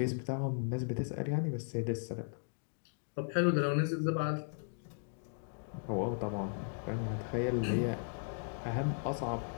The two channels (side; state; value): right; silent; digital silence